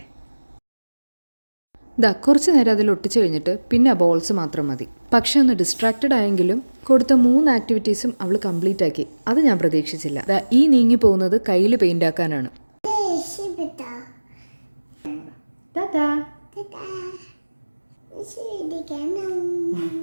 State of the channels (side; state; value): both; inverted; correlation -1.00